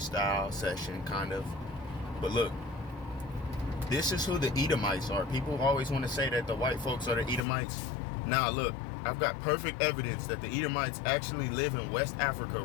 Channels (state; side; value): drops out; right; at 7.5 s